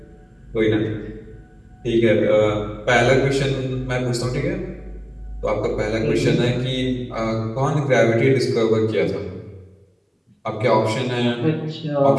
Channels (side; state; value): both; identical; correlation 1.00